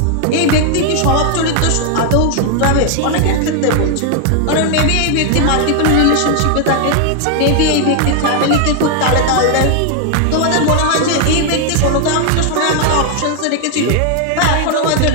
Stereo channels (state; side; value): different; both; correlation 0.00